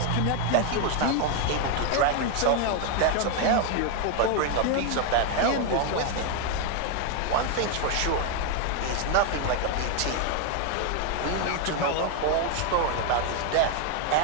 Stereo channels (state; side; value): different; both; correlation 0.01